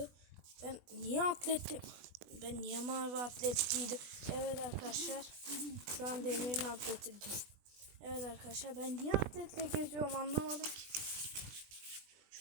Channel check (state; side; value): late; left; 20 ms